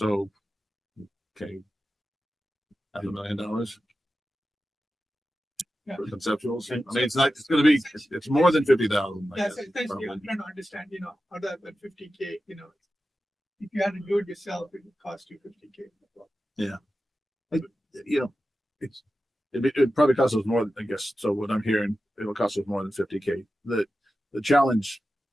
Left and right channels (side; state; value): both; normal; correlation 0.93